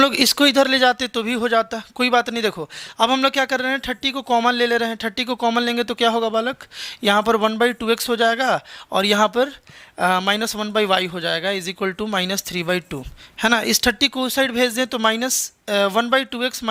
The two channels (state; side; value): identical; both; correlation 1.00